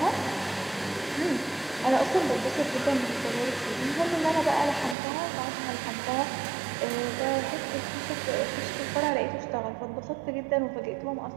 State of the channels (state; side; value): drops out; left; at 5.0 s